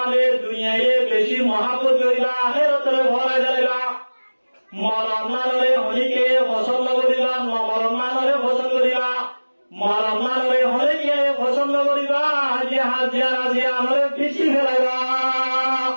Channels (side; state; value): both; inverted; correlation -1.00